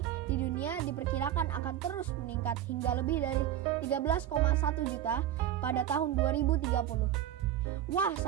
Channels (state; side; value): quieter; left; 11.4 dB